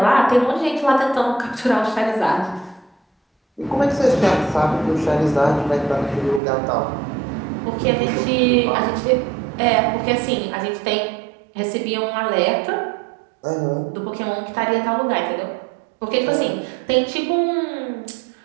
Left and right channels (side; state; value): left; drops out; at 6.4 s